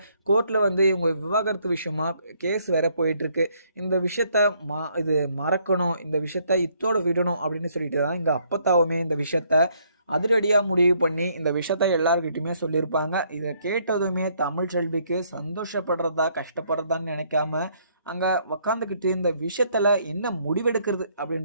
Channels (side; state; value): both; inverted; correlation -0.68